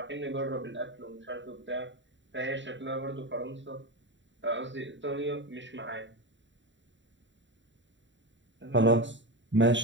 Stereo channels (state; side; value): late; left; 0.54 ms